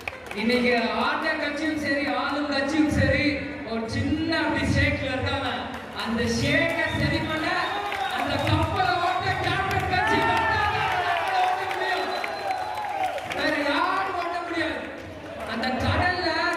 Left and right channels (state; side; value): identical; both; correlation 1.00